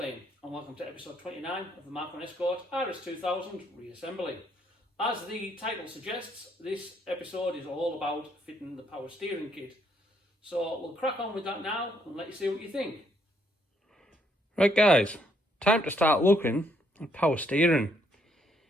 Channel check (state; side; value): normal; both; correlation 0.71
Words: and welcome to episode 29 of the MK1 Escort RS 2000 reassembly. As the title suggests, this episode is all about fitting the power steering kit. So we'll crack on with that now and let you see what you think. Right guys, time to start looking at power steering.